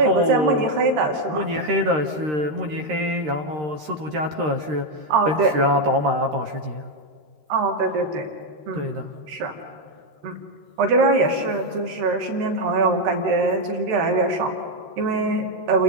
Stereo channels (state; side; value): late; left; 13 ms